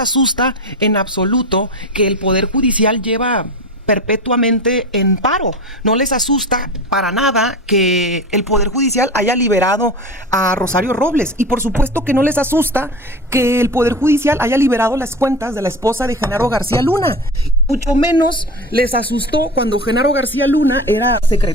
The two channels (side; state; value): both; normal; correlation 0.29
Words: en absoluto que el Poder Judicial lleva perpetuamente en paro. No les asusta para nada que el Poder Judicial haya liberado a Rosario Robles. Y por supuesto que no les asusta que el Poder Judicial haya liberado las cuentas de la esposa de Genaro García Luna. Mucho menos les asustó cuando Genaro García Luna era